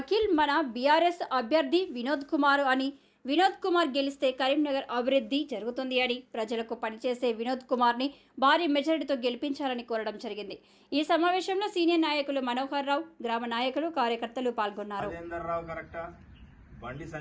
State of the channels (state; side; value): identical; both; correlation 1.00